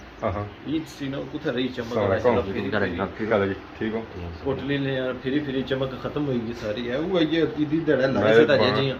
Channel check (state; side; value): identical; both; correlation 1.00